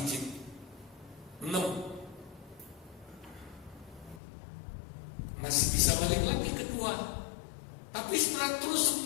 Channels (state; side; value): drops out; right; at 4.2 s